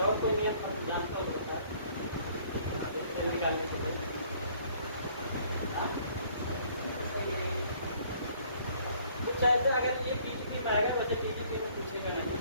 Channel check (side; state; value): both; inverted; correlation -0.60